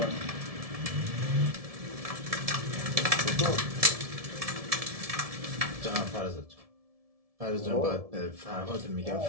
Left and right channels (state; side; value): late; left; 1.7 ms